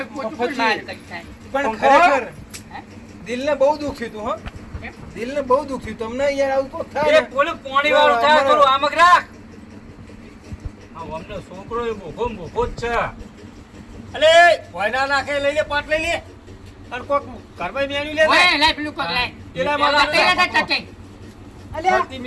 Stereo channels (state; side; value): identical; both; correlation 1.00